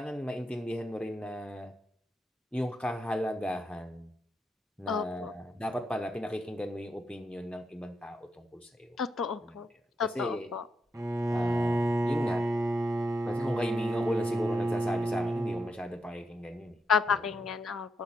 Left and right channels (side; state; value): both; normal; correlation 0.82